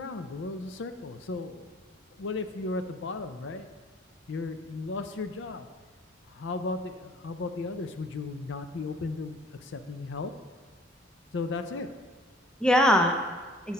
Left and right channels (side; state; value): both; normal; correlation 0.55